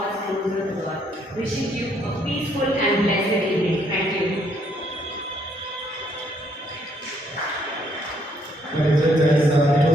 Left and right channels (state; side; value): normal; both; correlation 0.69